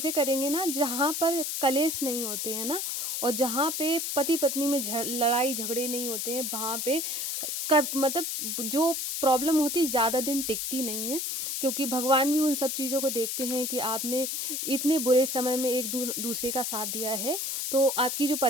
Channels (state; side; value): noise; left; hiss, 2 dB below the sound